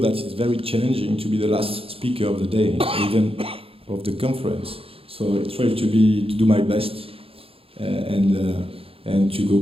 it's very challenging to be the last speaker of the day, even of the conference. So I try to do my best and to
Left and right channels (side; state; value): left; late; 0.27 ms